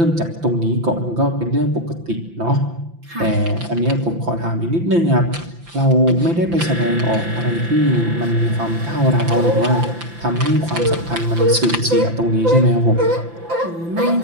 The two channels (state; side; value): late; left; 5.9 ms